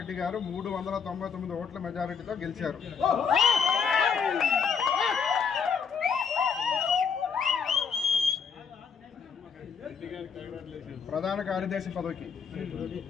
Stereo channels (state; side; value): quieter; right; 6.2 dB